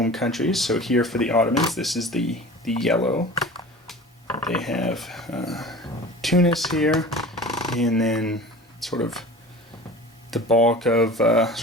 countries, so here for the Ottomans, this is the yellow. They have Tunis here, and then sort of the bulk of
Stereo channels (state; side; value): normal; both; correlation 0.39